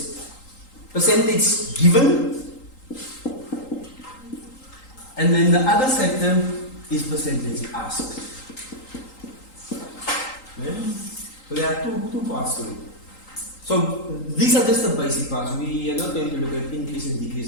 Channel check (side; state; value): right; late; 3.8 ms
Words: Percentage given, and then the other sector is percentage asked. Yeah? So there are two parts to it. So these are just the basic parts. We are not going to look at increase and